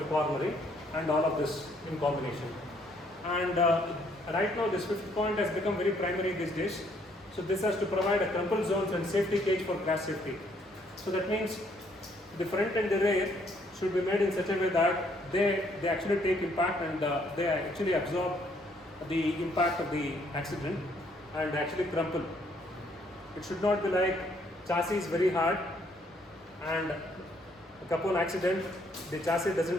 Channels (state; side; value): normal; both; correlation 0.67